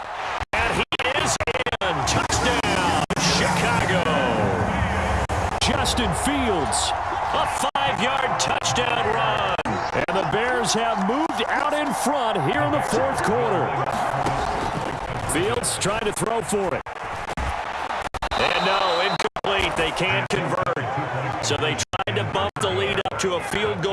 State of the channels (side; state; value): both; identical; correlation 1.00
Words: And he is in. Touchdown, Chicago. Justin Fields, a 5-yard touchdown run. And the Bears have moved out in front here in the 4th quarter. Fields trying to throw for it. And no, incomplete. They can't convert. So they tried to bump the lead up to a field